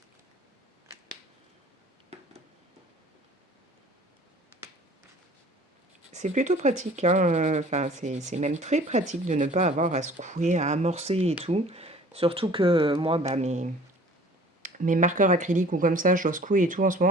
C'est plutôt pratique, hein, enfin, c'est même très pratique de ne pas avoir à secouer, à amorcer et tout. Surtout que moi, bah, mes marqueurs acryliques ou comme ça, je dois secouer et tout en ce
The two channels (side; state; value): both; normal; correlation 0.49